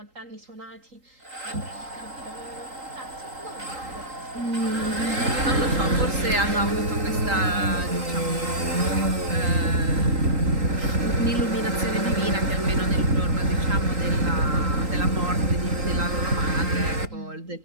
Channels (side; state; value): left; late; 3.8 ms